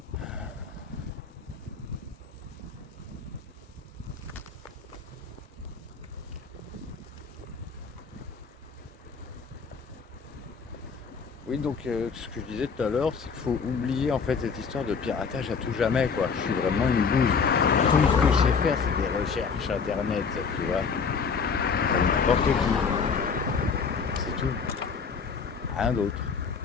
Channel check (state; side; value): quieter; right; 5.6 dB